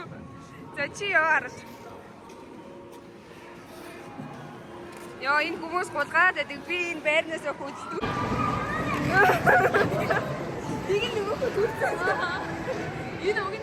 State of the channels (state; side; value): identical; both; correlation 1.00